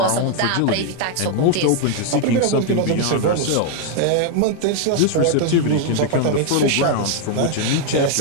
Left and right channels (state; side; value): different; both; correlation 0.00